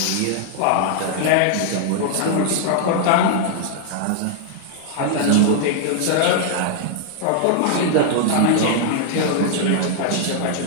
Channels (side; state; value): both; different; correlation -0.01